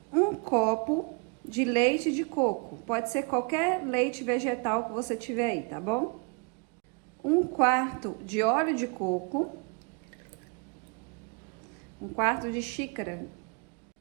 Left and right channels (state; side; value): quieter; left; 33.0 dB